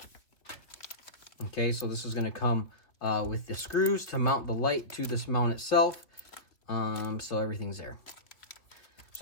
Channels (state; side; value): late; right; 2.8 ms